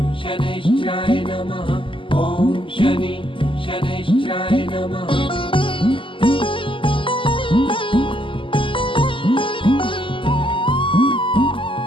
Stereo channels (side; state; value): right; late; 0.25 ms